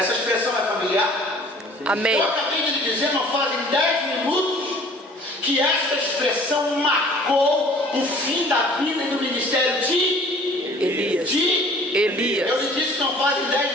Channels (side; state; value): both; normal; correlation 0.51